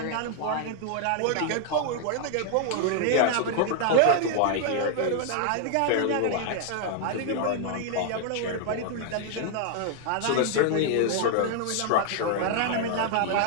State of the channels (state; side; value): different; both; correlation 0.00